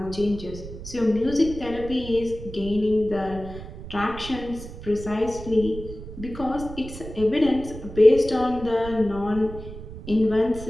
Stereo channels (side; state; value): right; noise; rumble, 12 dB below the sound